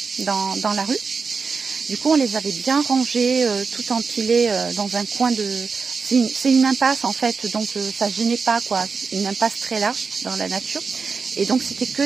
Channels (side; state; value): left; quieter; 5.0 dB